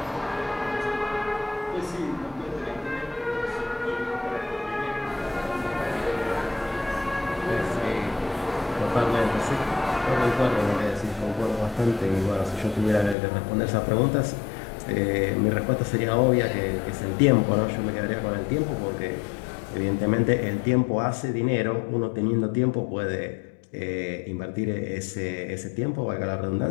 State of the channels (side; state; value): right; drops out; at 13.2 s